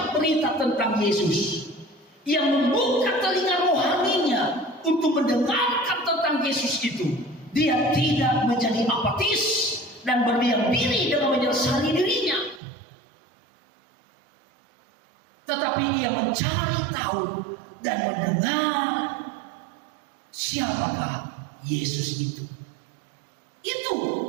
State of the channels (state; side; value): drops out; left; at 12.6 s